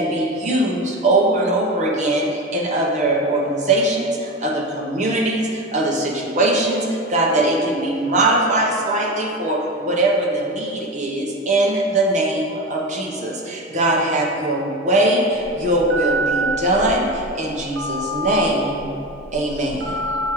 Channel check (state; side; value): normal; both; correlation 0.23